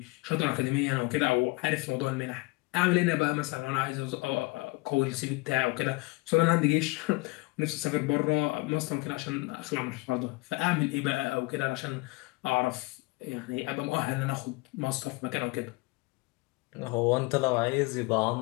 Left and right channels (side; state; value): right; quieter; 24.7 dB